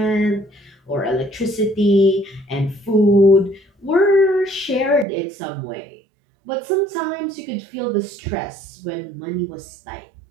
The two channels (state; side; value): drops out; left; at 5.1 s